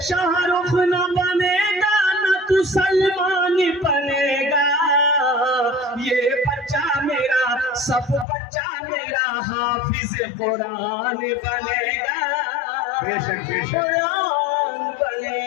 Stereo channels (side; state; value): right; drops out; at 8.2 s